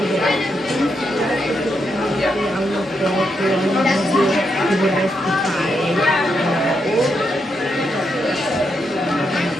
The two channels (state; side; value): normal; both; correlation 0.82